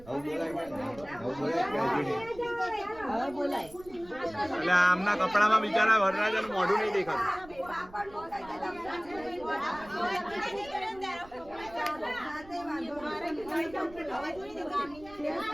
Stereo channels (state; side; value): noise; right; rumble, 21 dB below the sound